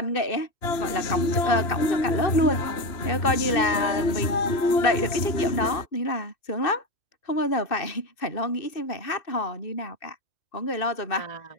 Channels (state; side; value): late; right; 2.9 ms